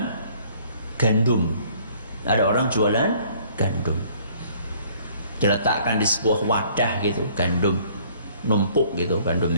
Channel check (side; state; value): both; inverted; correlation -0.58